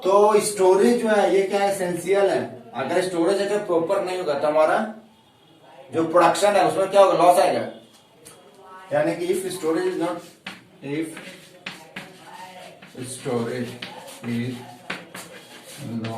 स्टोरेज जो है ये क्या है, एसेंशियल है। अगर स्टोरेज अगर प्रॉपर नहीं होगा तो हमारा जो प्रोडक्शन है उसमें क्या होगा, लॉस आएगा। यानी कि if storage is not, if storage is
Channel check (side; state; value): both; identical; correlation 1.00